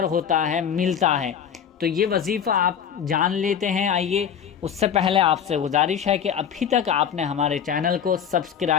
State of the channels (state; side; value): quieter; right; 8.1 dB